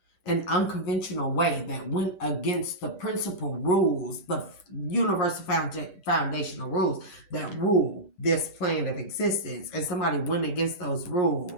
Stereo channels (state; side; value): late; right; 10 ms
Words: an unconventional way that went against the principal rules, the universal foundational rules that rule this plane of existence. And somebody went against those